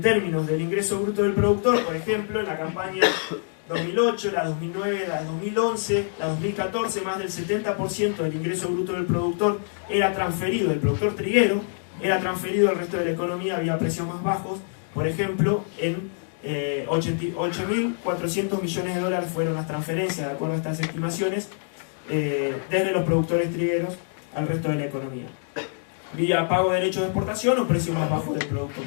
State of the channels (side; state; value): right; silent; digital silence